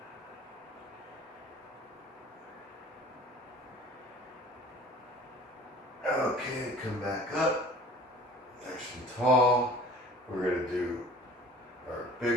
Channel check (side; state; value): both; normal; correlation 0.46